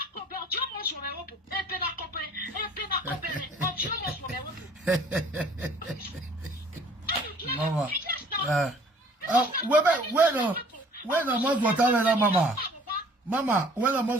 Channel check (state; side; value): normal; both; correlation 0.54